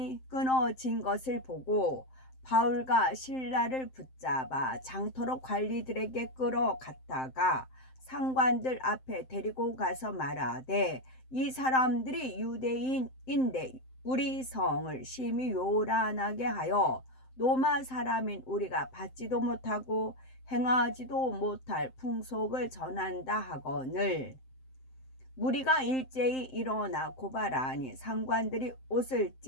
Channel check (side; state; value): right; late; 7.7 ms